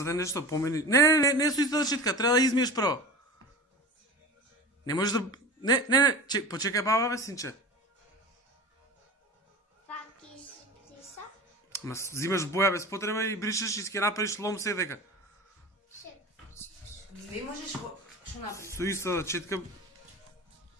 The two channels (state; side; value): normal; both; correlation 0.32